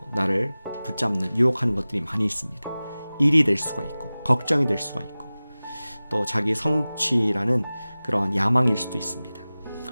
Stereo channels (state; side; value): inverted; both; correlation -0.98